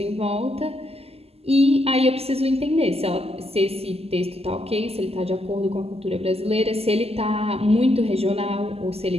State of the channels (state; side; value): late; left; 0.29 ms